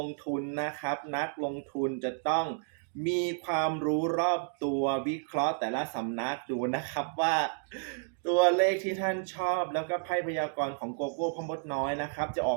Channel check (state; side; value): silent; left; digital silence